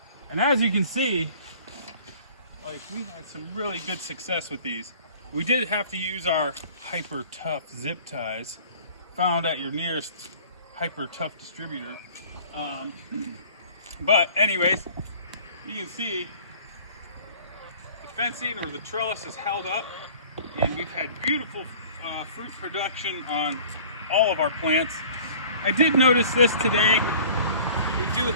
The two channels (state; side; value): inverted; both; correlation -0.48